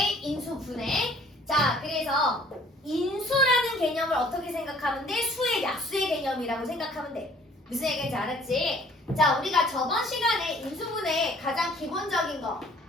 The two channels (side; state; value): both; normal; correlation 0.55